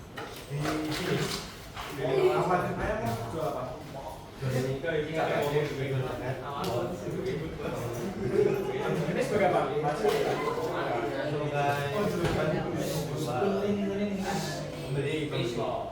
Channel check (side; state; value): both; identical; correlation 1.00